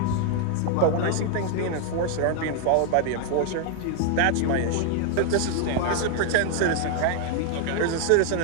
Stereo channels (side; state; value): both; different; correlation 0.00